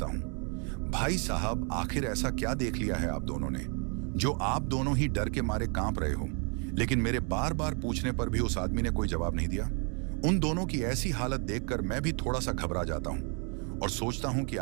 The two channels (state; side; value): quieter; left; 37.3 dB